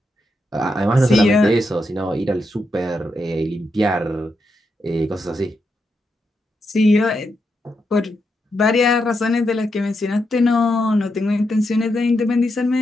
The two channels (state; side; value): normal; both; correlation 0.84